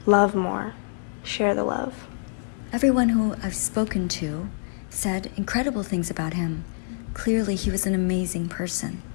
love more, share the love. Everyone who I've spoken to said incredible things about him. Clearly, he was an amazing person.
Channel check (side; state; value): right; silent; digital silence